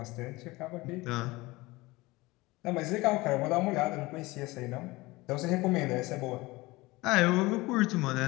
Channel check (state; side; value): quieter; right; 21.4 dB